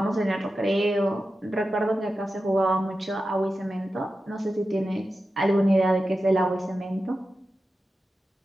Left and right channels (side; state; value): both; normal; correlation 0.92